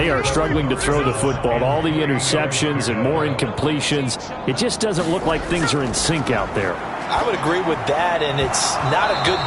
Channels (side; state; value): both; identical; correlation 1.00